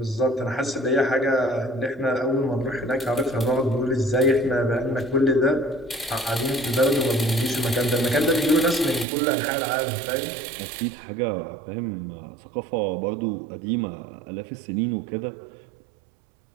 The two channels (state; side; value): drops out; left; at 9.1 s